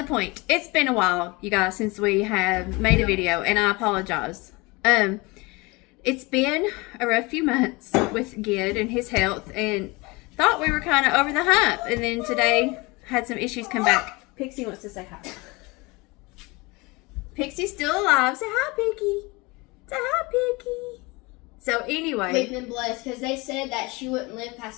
point, it's been a while, you guys, since we have made a video, and I apologize. It's been a rough few months with Gid and his health, and thought we were kind of over the hump, and then today had some issues come back. Pixie wants to say hi. Pixie's still alive. Say hi, Piggy. Say hi, Piggy. So anyway, we've been blessed because they said that she wouldn't live past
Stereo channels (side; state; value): right; quieter; 25.0 dB